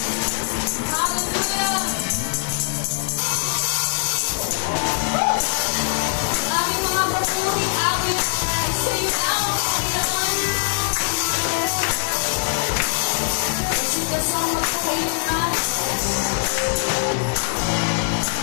Hallelujah. Aming mga papuri, amin sa iyo ang Panginoon. Kasi kasama ko kayo na.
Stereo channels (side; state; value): right; silent; digital silence